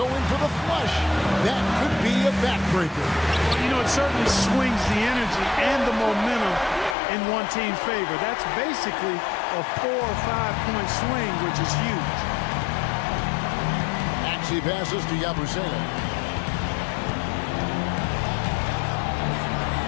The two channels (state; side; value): drops out; right; at 7.0 s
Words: in for the flush. That could be a backbreaker. Well, you know, it certainly swings the energy and the momentum in one team's favor. That's basically a 4 or 5 point swing, which is huge. Maxey passes to Yabusele.